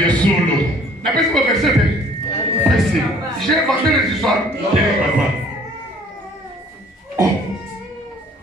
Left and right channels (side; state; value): both; normal; correlation 0.55